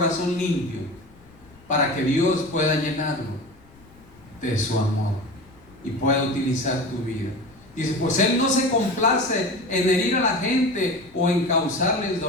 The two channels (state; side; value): noise; left; rumble, 26 dB below the sound